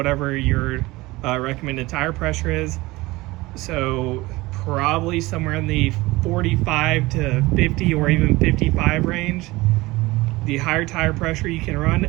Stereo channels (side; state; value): left; quieter; 20.6 dB